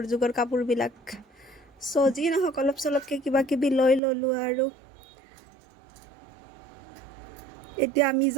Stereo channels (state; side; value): drops out; left; at 4.0 s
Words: যুগৰ কাপোৰবিলাক। যি নহওক, অলপ চলপকৈ কিবা কিবি লৈ ল'লোঁ আৰু। এতিয়া আমি